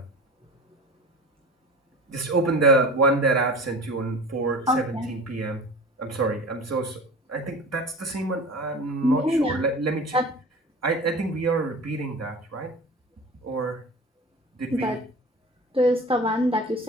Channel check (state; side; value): normal; both; correlation 0.37